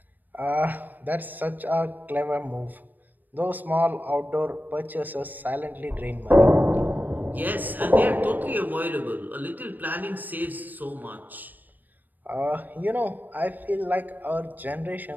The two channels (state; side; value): late; left; 0.087 ms